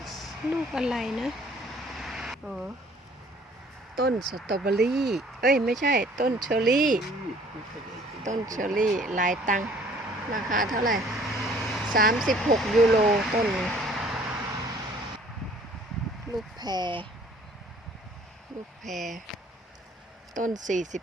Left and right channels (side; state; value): both; normal; correlation 0.56